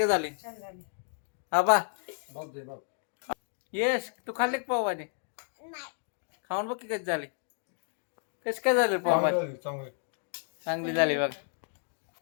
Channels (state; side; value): silent; right; 55 dB below the other